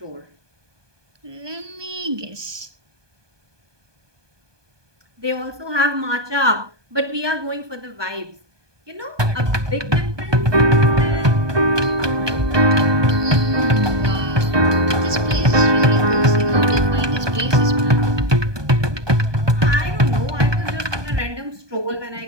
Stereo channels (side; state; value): left; late; 1.2 ms